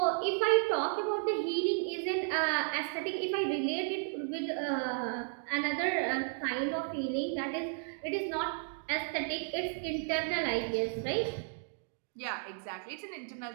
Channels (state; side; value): silent; left; 55 dB below the other